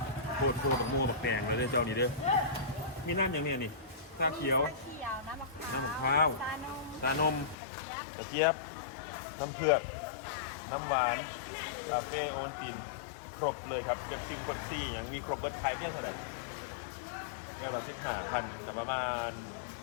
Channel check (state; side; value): drops out; right; at 7.6 s